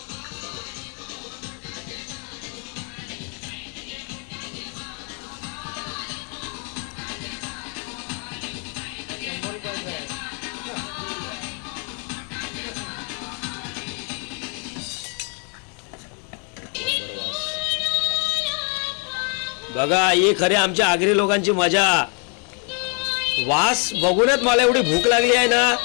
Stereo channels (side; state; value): right; quieter; 39.0 dB